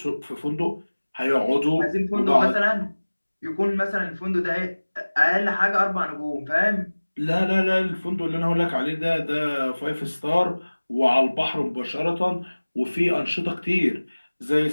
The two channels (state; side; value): inverted; both; correlation -1.00